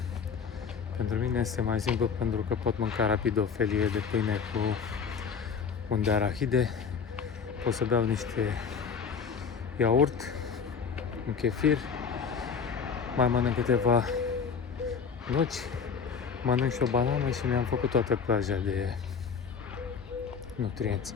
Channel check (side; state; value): right; quieter; 6.1 dB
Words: Pentru mine este mai simplu pentru că pot mânca rapid o felie de pâine cu un de arahide, pot să beau niște iaurt, un chefir, mai mănânc câteva nuci, mănânc și o banană și mi-am făcut toată plaja de nutrienți.